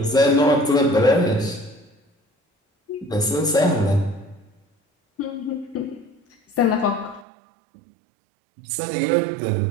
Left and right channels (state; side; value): drops out; left; at 7.2 s